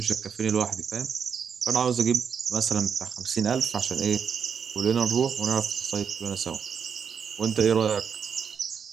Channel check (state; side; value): quieter; left; 6.9 dB